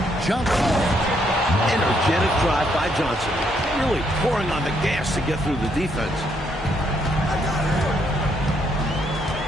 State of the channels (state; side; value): normal; both; correlation 0.73